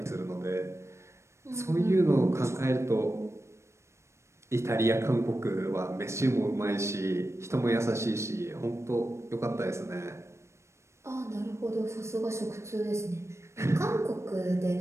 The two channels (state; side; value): late; left; 0.13 ms